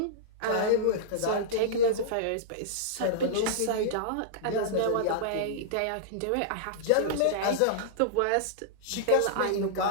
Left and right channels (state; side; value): different; both; correlation -0.02